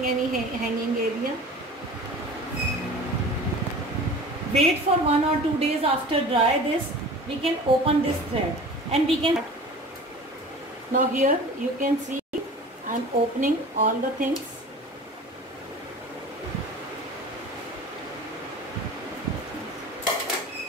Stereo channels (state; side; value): normal; both; correlation 0.40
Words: any hanging area, wait for 1 or 2 days after dry this, we can open this thread and we can. Now here you can see I am opening all the things.